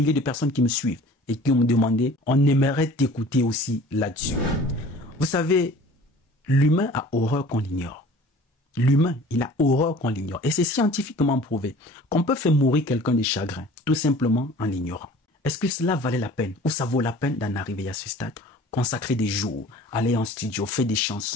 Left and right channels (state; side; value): normal; both; correlation 0.46